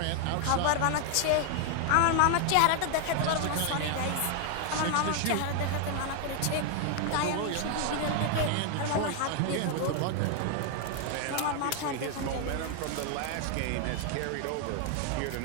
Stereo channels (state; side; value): different; both; correlation 0.00